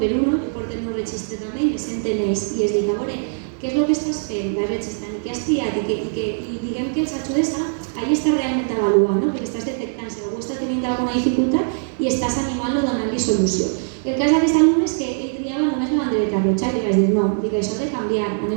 uno, i porten un registre també, i me senten ells, i es dic, a veure, què és el que estàs fent, vas registrant, i què has triat, i diguem que els ajudes a allà estar realment avaluant, perquè estàs detectant si algú està tenint alguna dificultat i estàs animant-lo donant-li solució. El cas d'aquest alumne és que ell triava només la bandereta roja, i li vaig dir, no, això ha de canviar,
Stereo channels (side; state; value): left; silent; digital silence